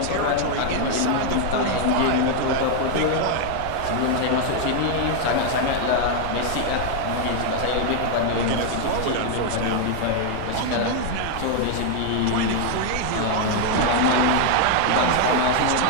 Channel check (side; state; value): both; different; correlation 0.00